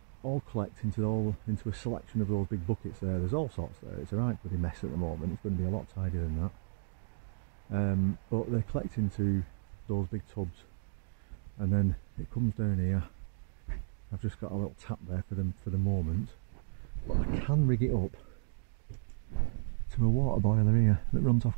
all collect into a selection of those big buckets there. There's all sorts there. It's a right bloody mess at the moment. It's going to be a lot tidier than that. But they collect into those big tubs, and then it comes down here. I've just got a little tap there for the moment, but I can rig it up to a water boiler here that runs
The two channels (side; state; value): left; silent; digital silence